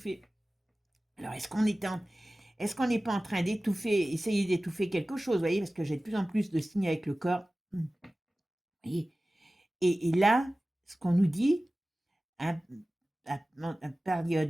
Alors, est-ce qu'on n'est pas en train d'étouffer, essayer d'étouffer quelque chose, vous voyez, parce que j'ai de plus en plus de signes avec le corps. Et, et là, ce qu'on nous dit, à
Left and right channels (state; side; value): normal; both; correlation 0.97